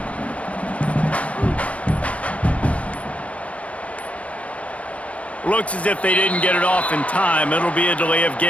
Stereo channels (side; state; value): right; late; 0.065 ms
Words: Looks as if they didn't get it off in time. It'll be a delay of